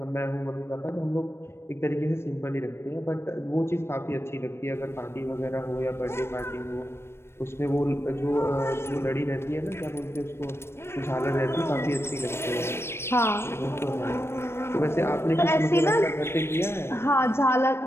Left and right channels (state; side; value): late; right; 0.12 ms